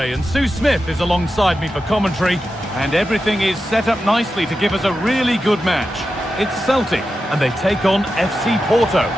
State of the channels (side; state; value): both; normal; correlation 0.91